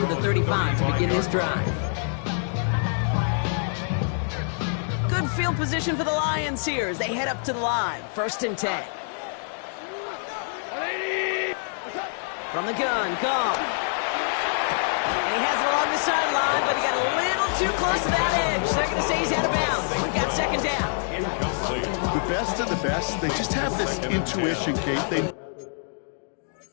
the 35 to begin this drive. Good field position for the Lions here as they head up to the line. 1st and 10. From the gun, Goff. And he has it along the sideline, but he got a little too close to that edge. They're going to say he's out of bounds. We've got 2nd down. The best of the best, they just have this intuition, Kate. They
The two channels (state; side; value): silent; right; digital silence